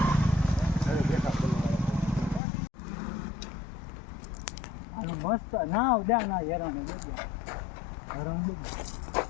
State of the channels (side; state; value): right; drops out; at 2.4 s